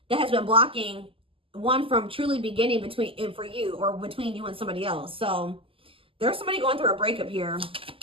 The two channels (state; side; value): late; left; 0.26 ms